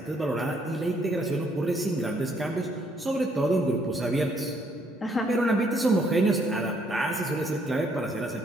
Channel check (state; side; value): normal; both; correlation 0.68